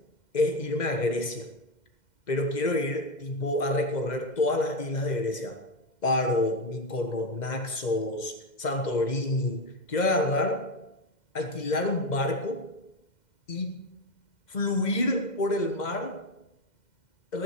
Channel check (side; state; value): right; late; 2.1 ms